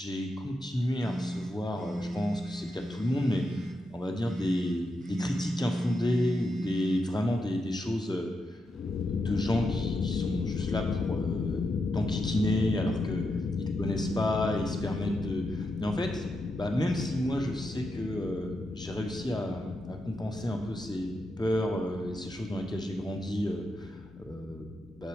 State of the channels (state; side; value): normal; both; correlation 0.85